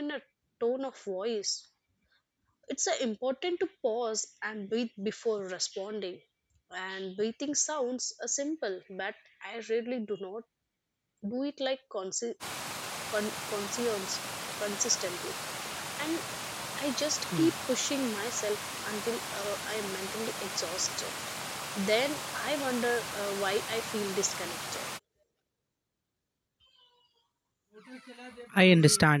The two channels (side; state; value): both; identical; correlation 1.00